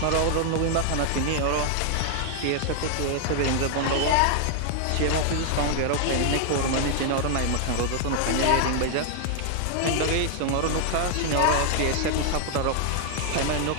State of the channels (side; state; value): both; different; correlation 0.00